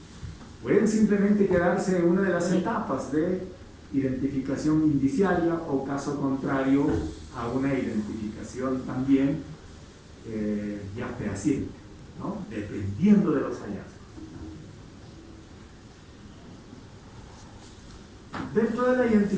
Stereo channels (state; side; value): identical; both; correlation 1.00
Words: simplemente quedarse en una de las etapas de identificación indiciaria o, caso contrario, a una identificación también ya fehaciente, ¿no?, dependiendo de los hallazgos. Dentro de la